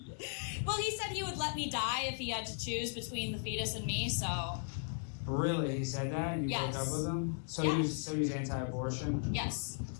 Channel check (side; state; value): right; silent; digital silence